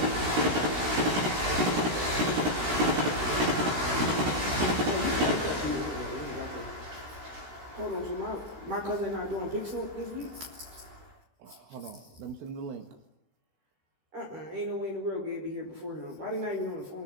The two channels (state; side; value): late; left; 16 ms